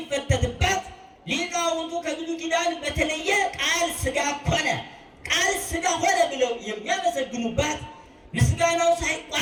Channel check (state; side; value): identical; both; correlation 1.00